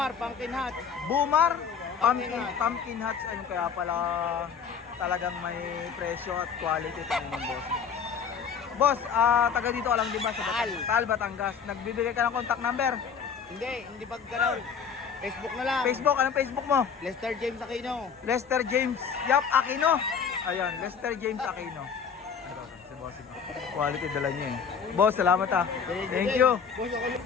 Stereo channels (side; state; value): right; quieter; 6.5 dB